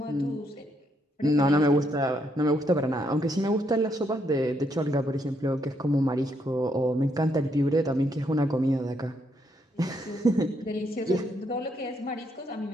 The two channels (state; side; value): normal; both; correlation 0.75